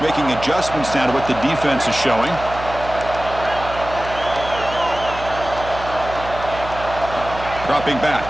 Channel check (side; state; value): right; noise; hum, 11 dB below the sound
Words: making adjustments now to what the defense is showing. Dropping back.